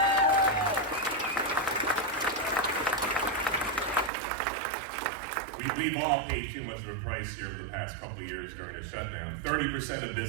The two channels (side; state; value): left; drops out; at 4.1 s